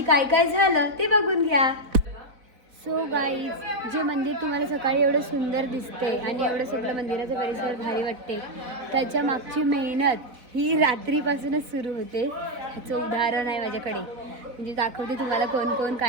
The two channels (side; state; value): left; late; 4.0 ms